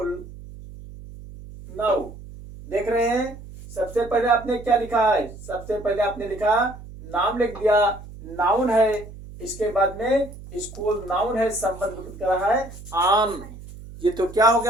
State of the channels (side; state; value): right; noise; hum, 15 dB below the sound